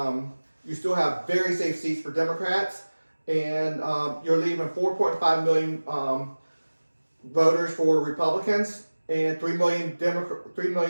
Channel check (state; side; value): inverted; both; correlation -1.00